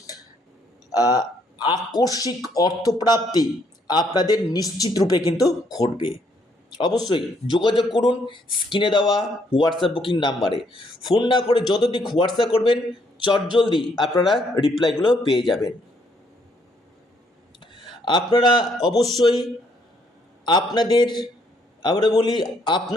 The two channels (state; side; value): normal; both; correlation 0.70